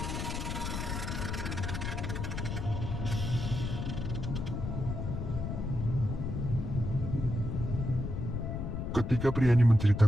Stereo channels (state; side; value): noise; left; rumble, 3 dB below the sound